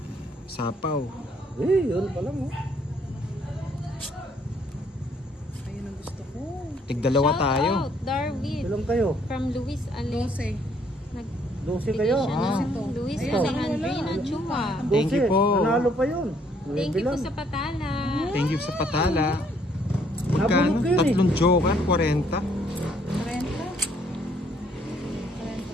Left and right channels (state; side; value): normal; both; correlation 0.66